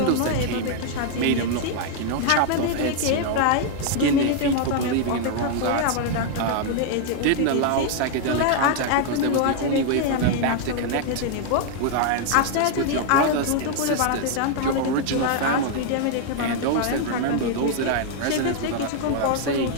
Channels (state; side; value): different; both; correlation 0.00